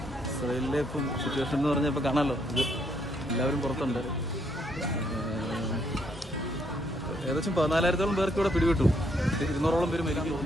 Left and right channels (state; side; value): normal; both; correlation 0.72